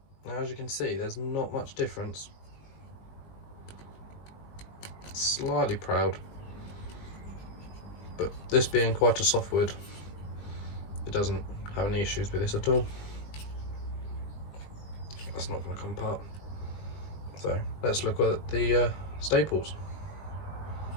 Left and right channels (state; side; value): late; right; 20 ms